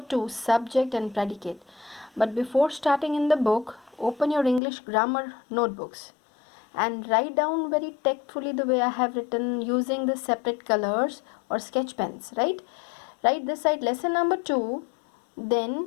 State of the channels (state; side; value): drops out; right; at 4.6 s